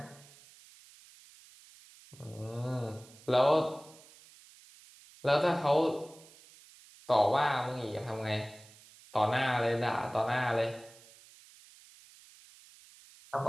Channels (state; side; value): noise; right; hiss, 23 dB below the sound